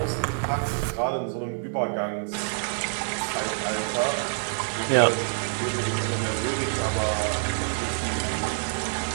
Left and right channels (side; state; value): left; silent; 59 dB below the other